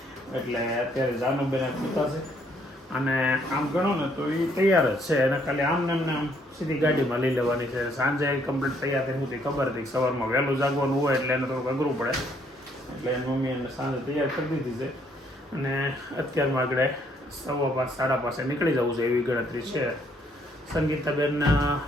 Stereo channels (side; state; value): both; normal; correlation 0.68